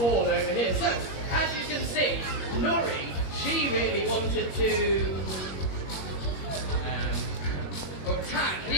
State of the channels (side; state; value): right; late; 21 ms